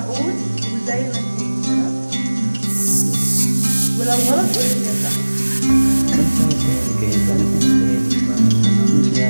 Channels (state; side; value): inverted; both; correlation -1.00